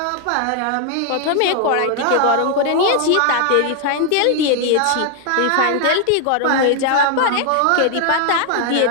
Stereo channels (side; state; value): both; different; correlation 0.00